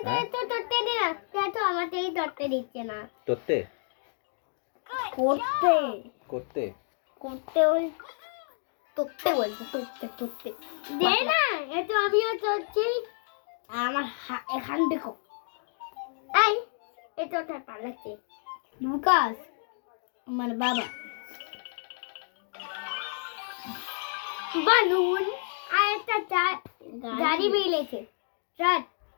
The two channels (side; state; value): right; silent; digital silence